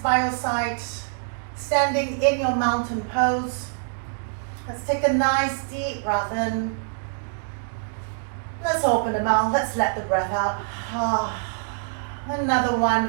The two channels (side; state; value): left; silent; digital silence